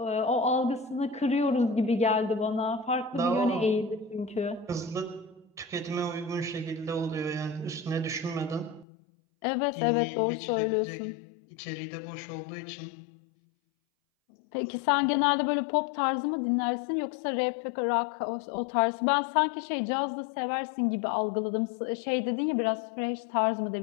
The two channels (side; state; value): right; drops out; at 8.8 s